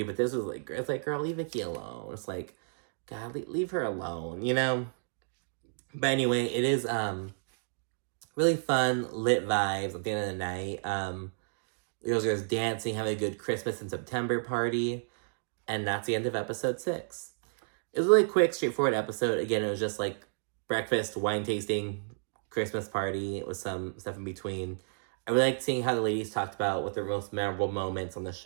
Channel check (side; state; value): left; silent; digital silence